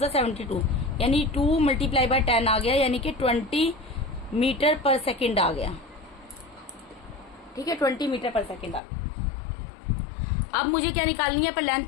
72, यानी 2 मल्टीप्लाई बाय 10 आ गया, यानी कि 20 मीटर पर सेकेंड आ गया। ठीक है, 20 मीटर पर सेकेंड आ गया। अब मुझे क्या निकालनी है, पर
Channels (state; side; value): drops out; right; at 8.8 s